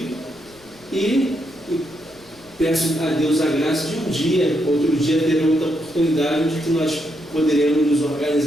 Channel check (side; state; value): left; noise; rumble, 29 dB below the sound